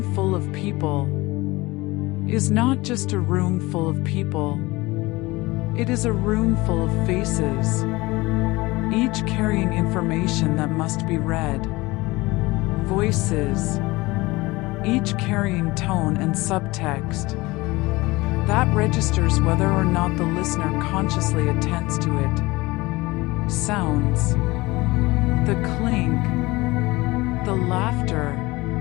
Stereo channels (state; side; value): quieter; right; 21.5 dB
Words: full of people is not just a room full of people. It is a room full of faces, each carrying information that must be read. Voices, each carrying tone and subtext that registers whether or not the listener consciously attends to it. Sounds, the clink, the laughter,